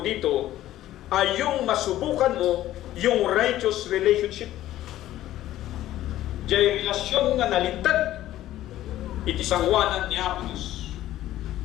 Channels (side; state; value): right; quieter; 13.9 dB